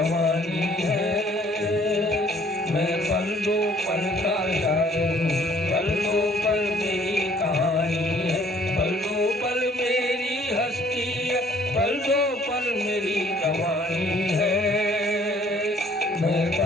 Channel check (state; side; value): normal; both; correlation 0.59